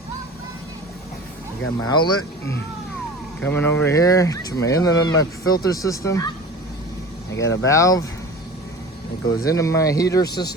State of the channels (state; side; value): normal; both; correlation 0.37